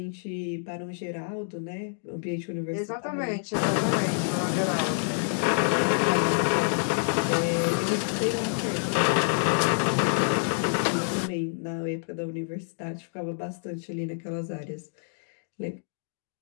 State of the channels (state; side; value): silent; right; digital silence